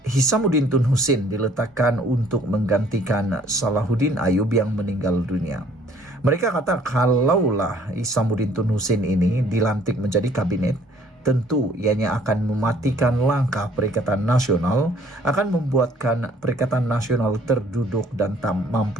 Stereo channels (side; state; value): both; normal; correlation 0.59